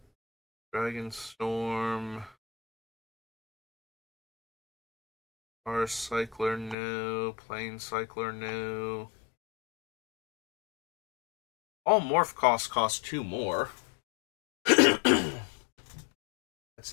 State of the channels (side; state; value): right; drops out; at 6.8 s